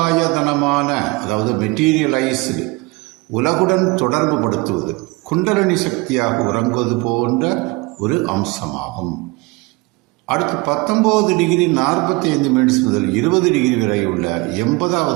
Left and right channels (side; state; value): left; quieter; 24.6 dB